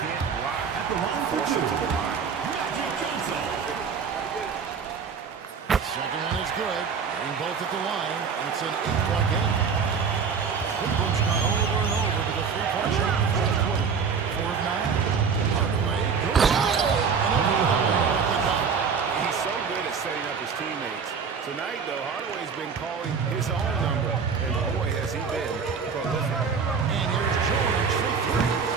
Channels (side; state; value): left; quieter; 6.0 dB